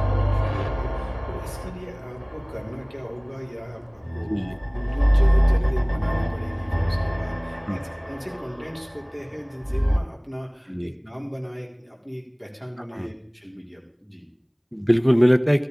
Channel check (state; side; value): identical; both; correlation 1.00